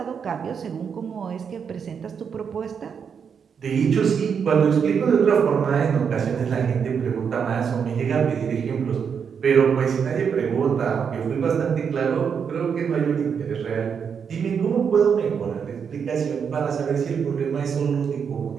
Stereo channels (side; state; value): left; quieter; 6.8 dB